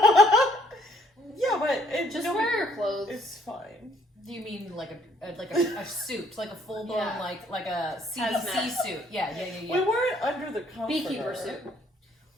Yeah, but it Just no, wear your clothes. It's fine. Do you mean like a suit, like a full blown Yeah. like a CDC Hazmat. suit? Yeah. We weren't under the comforter. Beekeeper suit.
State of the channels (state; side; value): normal; both; correlation 0.64